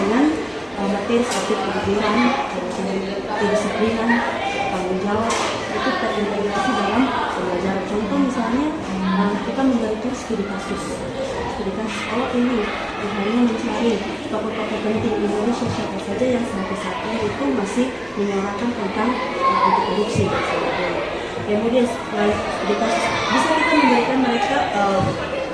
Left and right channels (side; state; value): both; identical; correlation 1.00